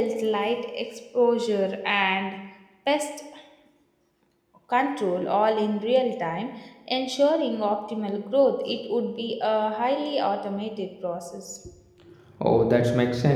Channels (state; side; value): identical; both; correlation 1.00